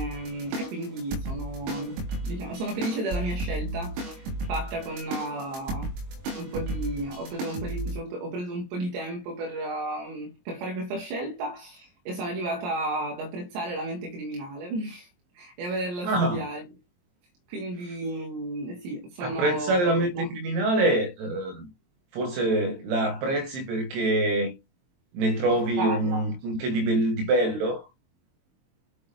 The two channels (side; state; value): left; late; 23 ms